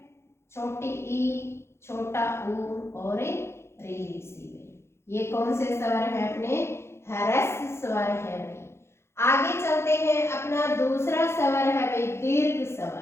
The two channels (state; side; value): late; right; 0.13 ms